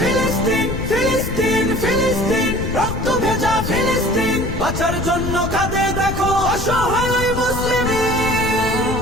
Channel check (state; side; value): noise; left; rumble, 6 dB below the sound